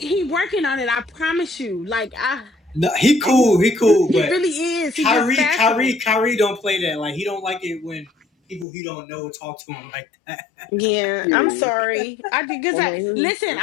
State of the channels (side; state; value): right; drops out; at 8.7 s